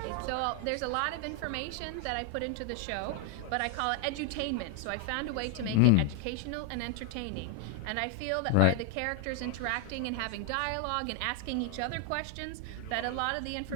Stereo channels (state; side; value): different; both; correlation 0.00